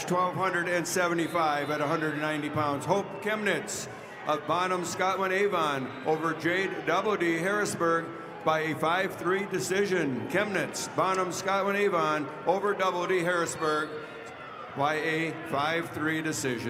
1275 at 190 pounds. Hope Chemnitz of Bonham, Scotland, Avon over Jade Doubledy, Harrisburg by a 5-3 decision. Chemnitz, Bonham, Scotland, Avon over Doubledy, Harrisburg by a 5-3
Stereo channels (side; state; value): both; identical; correlation 1.00